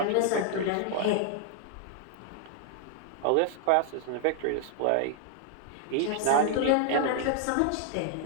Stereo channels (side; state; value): both; different; correlation 0.00